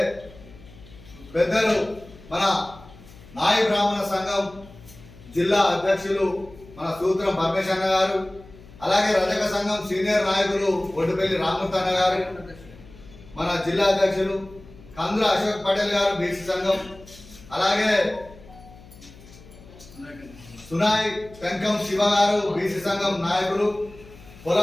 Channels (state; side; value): noise; left; hum, 21 dB below the sound